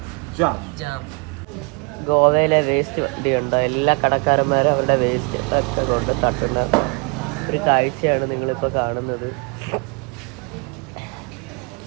ജാം. ഗോവയിലെ വേസ്റ്റ് വണ്ടിയുണ്ടോ? എല്ലാ കടക്കാരന്മാരും അവരുടെ വേസ്റ്റ് ഒക്കെ കൊണ്ട് തട്ടുന്ന ഒരു കാഴ്ചയാണ് നിങ്ങളിപ്പോൾ കാണുന്നത്.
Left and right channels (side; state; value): left; quieter; 32.3 dB